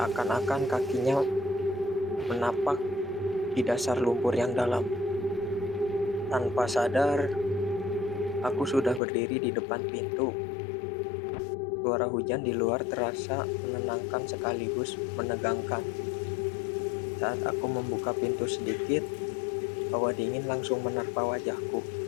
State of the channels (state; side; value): drops out; right; at 9.0 s